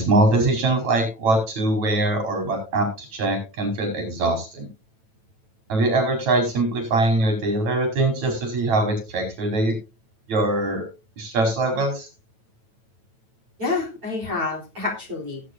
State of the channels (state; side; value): late; left; 9.1 ms